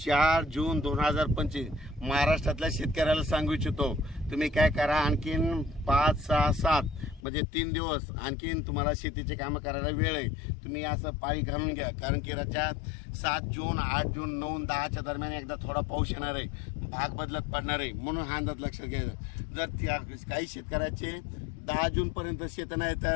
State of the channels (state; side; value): drops out; right; at 7.2 s